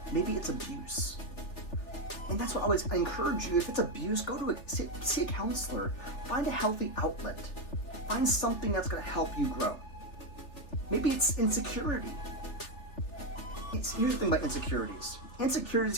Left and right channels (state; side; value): late; right; 3.4 ms